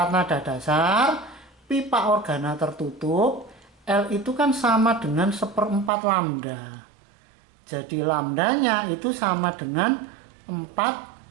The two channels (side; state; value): left; drops out; at 5.9 s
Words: nada dasar pipa organa tertutup, L itu kan sama dengan 1/4 lambda. Jadi lambdanya itu sama dengan 4